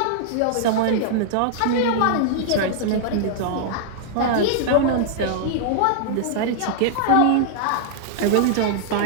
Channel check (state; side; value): different; both; correlation -0.01